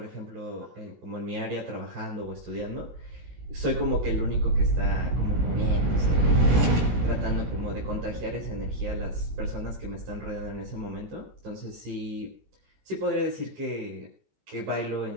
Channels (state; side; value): late; left; 17 ms